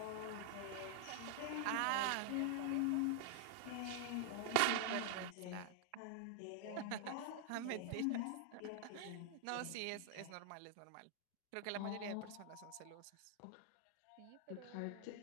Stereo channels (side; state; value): both; different; correlation -0.01